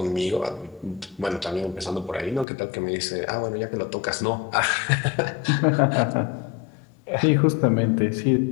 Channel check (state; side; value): drops out; right; at 2.5 s